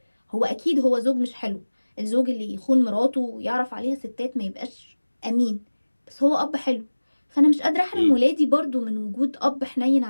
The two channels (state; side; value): inverted; both; correlation -1.00